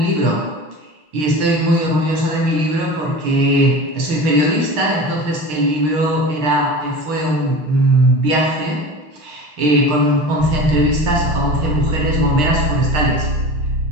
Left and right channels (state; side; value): late; left; 6.6 ms